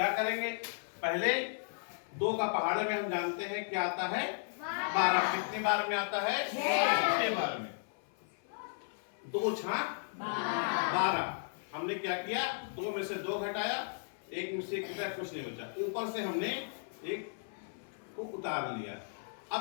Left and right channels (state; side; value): silent; right; 54 dB below the other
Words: करेंगे? पहले 2 का पहाड़ में हम जानते हैं क्या आता है 12। कितने बार में आता है? 6 बार में। 2 छाक 12। हमने क्या किया? 2 में से 2 घटाया, 1 में से 1 घटाया, कुछ नहीं बचा। ऊपर से हमने 1 को उतार लिया।